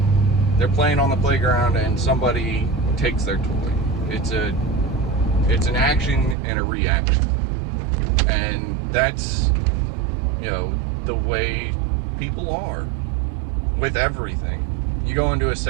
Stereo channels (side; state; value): left; drops out; at 6.4 s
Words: they're playing on the playground and somebody takes their toy. It's an action and a reaction. And that's, the way people are with everything. You go into a